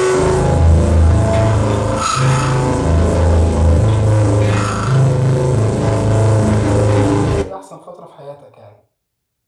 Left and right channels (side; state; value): both; identical; correlation 1.00